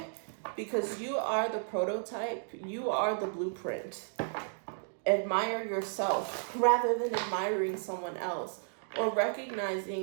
Because you are the prototype, you are the blueprint. Admire yourself rather than admiring someone else, or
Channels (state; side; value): silent; left; digital silence